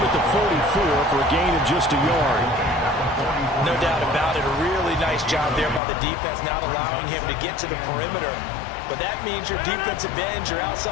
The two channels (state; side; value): drops out; right; at 5.8 s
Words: at the 44 for a gain of just a yard. No doubt about it. A really nice job there by the defense, not allowing him to get to the perimeter. But that means your defensive ends, your